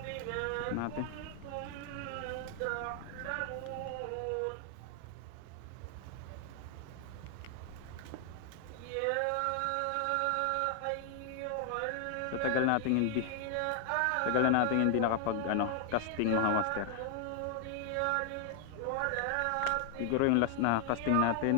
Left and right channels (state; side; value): different; both; correlation 0.00